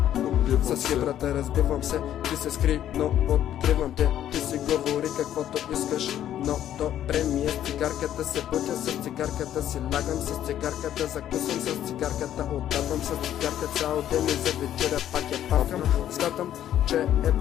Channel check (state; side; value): quieter; right; 11.2 dB